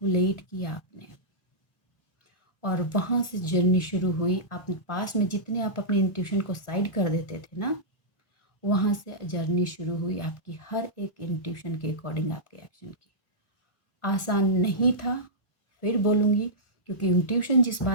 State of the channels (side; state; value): right; late; 1.4 ms